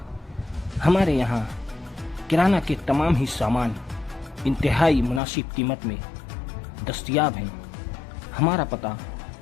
हमारे यहाँ किराना के तमाम ही सामान इंतहाई मुनासिब कीमत में दस्तयाब हैं। हमारा पता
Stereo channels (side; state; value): right; drops out; at 5.2 s